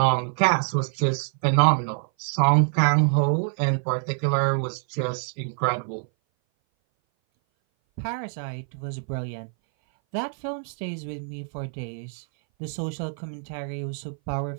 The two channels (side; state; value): left; silent; 58 dB below the other